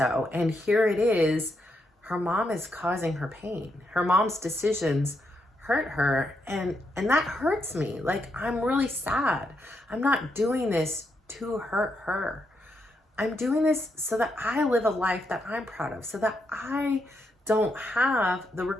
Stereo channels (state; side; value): normal; both; correlation 0.81